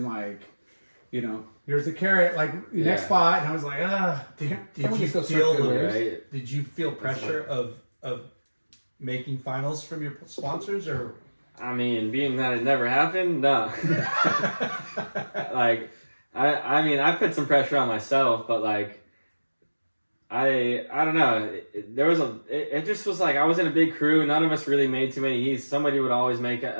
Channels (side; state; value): both; inverted; correlation -1.00